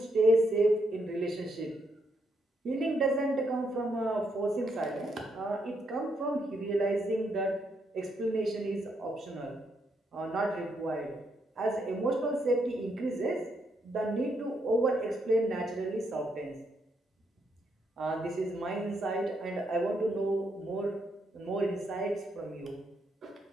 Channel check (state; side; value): normal; both; correlation 0.77